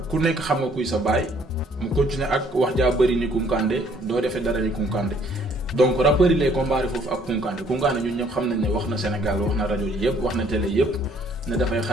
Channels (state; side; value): normal; both; correlation 0.62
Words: ku nekk xam nga kuy sa baay mu continuer ak wax jaa bëri ni Kounkandé doo defee dara ni Kounkandé. Donc rappeurs yi lay comparé foofu ak Kounkandé ñun ñëpp xam nañ ne wax na Sénégal wax na rajo yi yëpp wax na télé yëpp ne dafay